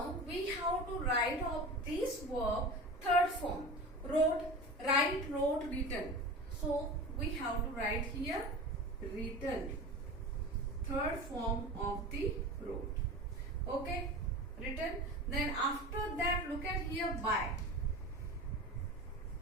we have to write of this verb third form. Wrote, write, wrote, written. So we have to write here written. Third form of the wrote. Okay, written. Then after that, look at here by.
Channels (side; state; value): both; normal; correlation 0.32